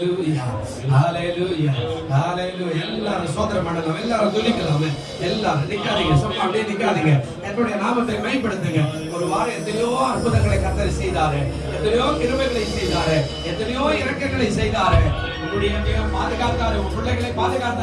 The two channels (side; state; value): both; identical; correlation 1.00